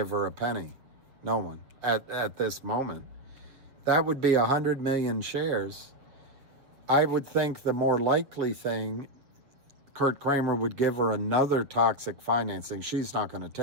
her a penny. No one at this moment. That would be 100 million shares. I would think the more likely thing, Kurt Kramer would give her another toxic financing. She's not going to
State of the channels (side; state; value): left; late; 7.3 ms